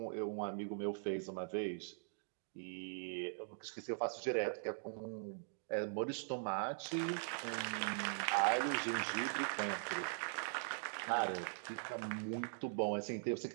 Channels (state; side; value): silent; left; digital silence